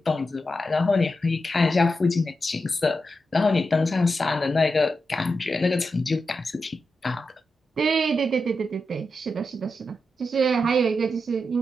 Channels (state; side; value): normal; both; correlation 0.88